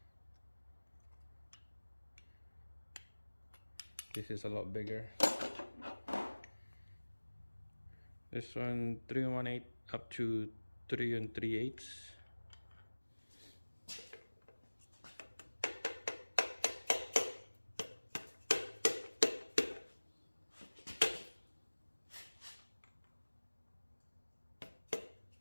This is a lot bigger. This one 3 1/8 up to 3 3/8.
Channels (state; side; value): inverted; both; correlation -1.00